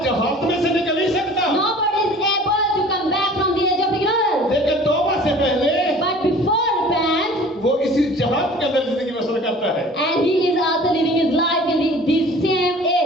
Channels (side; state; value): both; normal; correlation 0.46